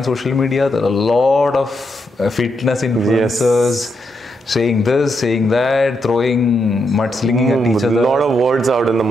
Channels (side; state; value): both; normal; correlation 0.81